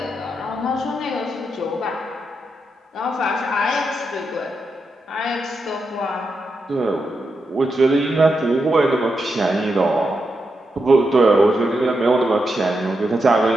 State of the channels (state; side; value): normal; both; correlation 0.85